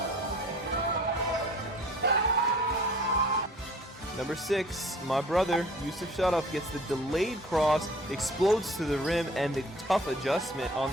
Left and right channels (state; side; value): normal; both; correlation 0.49